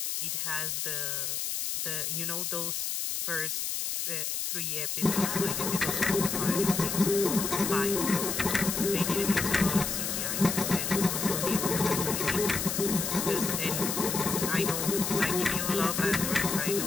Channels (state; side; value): noise; left; hiss, 2 dB below the sound